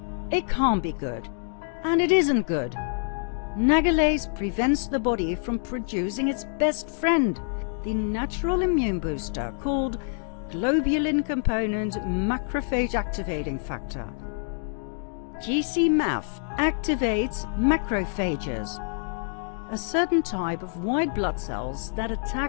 it can't be good. And it isn't good. Nagalase prevents the body from producing its best friend, the natural immune booster called globulin component macrophage activating factor. GC-MAF activates macrophages, a certain type of white blood cells that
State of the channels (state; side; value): silent; right; digital silence